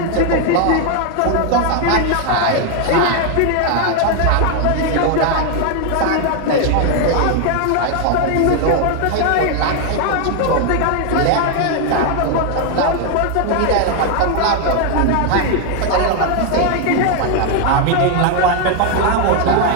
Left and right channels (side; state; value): both; different; correlation 0.01